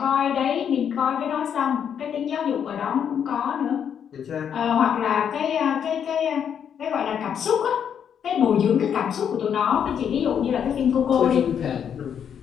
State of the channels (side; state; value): right; quieter; 8.2 dB